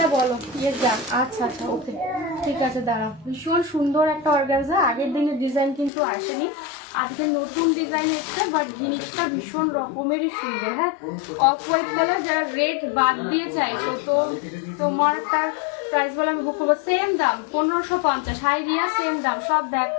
বলো ইয়েস যান। আচ্ছা আচ্ছা, ওকে ঠিক আছে, দাঁড়াও। ভীষণ সুন্দর একটা অর্গানজা, আগের দিনের ডিজাইন কিন্তু আসেনি, আজকে নতুন ডিজাইন এসছে, বাট জিনিসটা ভীষণ রকমেরই সুন্দর। হ্যাঁ, অফ হোয়াইট কালার, যারা রেড বাদ দিয়ে চাইছো তো তোমারটার প্রাইস বলে আমি বুক করবো। সেম দাম 1550। হাই রিয়া, সেম দাম। সব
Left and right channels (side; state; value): right; drops out; at 5.9 s